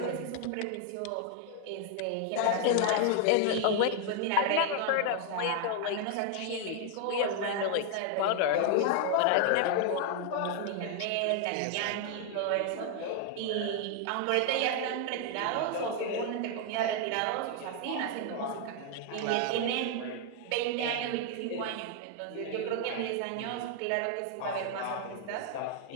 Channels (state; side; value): different; both; correlation 0.00